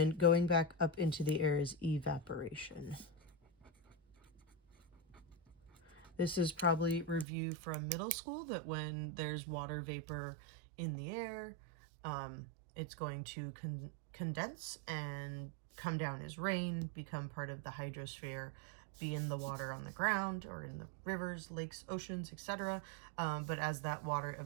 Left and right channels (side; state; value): left; drops out; at 7.2 s